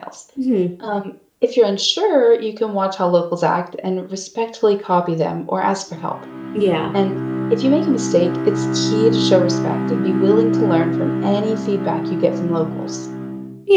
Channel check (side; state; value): both; identical; correlation 1.00